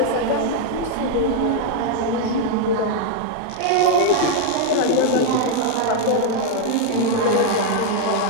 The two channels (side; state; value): both; different; correlation 0.00